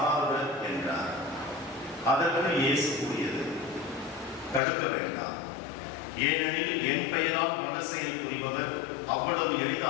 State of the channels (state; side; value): drops out; right; at 4.6 s